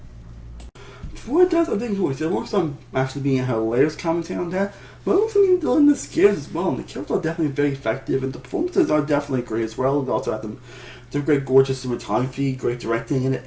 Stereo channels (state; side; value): identical; both; correlation 1.00